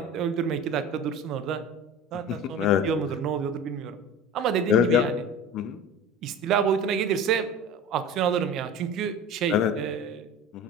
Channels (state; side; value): normal; both; correlation 0.35